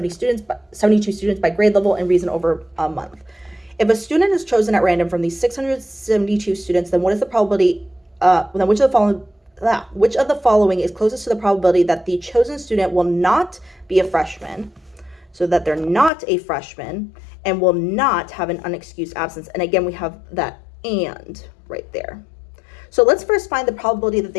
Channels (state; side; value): drops out; right; at 16.1 s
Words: students by grade level and reason over a month. If a student is chosen at random from these 672 students, then what is the probability, then which of the following is closest to the probability that the chosen student will not be a freshman, so that they're not a freshman, and will not have an unexcused absence? And again, we have that "and" right there. So let's first find the probability that